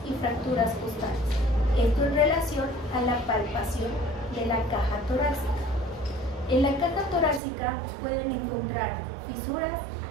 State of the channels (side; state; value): left; drops out; at 7.4 s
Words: y fracturas costales. Esto en relación a la palpación de la caja torácica. En la caja torácica pueden encontrar fisuras,